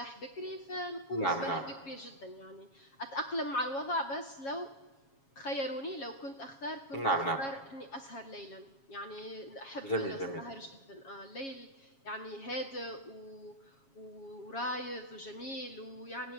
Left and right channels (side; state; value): right; late; 7.3 ms